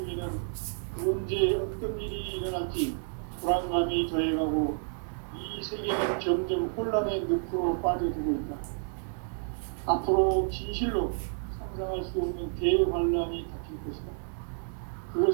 언제 어떤 일이 일어날지 불안감이 더해가고 이 세계는 점점 혼란의 늪으로 빠져들고 있다. 앞으로 진실로 상상할 수 없는 대환란이 닥칠 것이다.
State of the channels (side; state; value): left; silent; 58 dB below the other